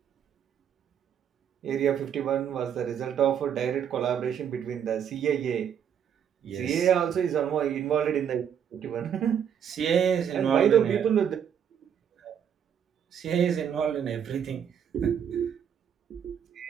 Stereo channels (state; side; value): quieter; left; 8.4 dB